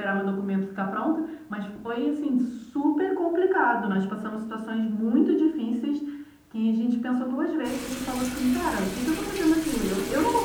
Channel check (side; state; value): both; identical; correlation 1.00